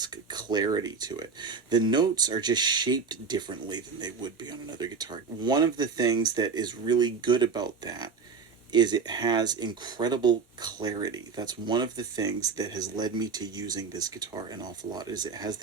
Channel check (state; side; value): quieter; left; 5.2 dB